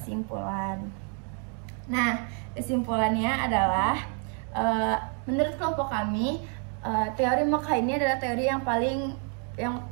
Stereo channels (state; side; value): quieter; left; 38.9 dB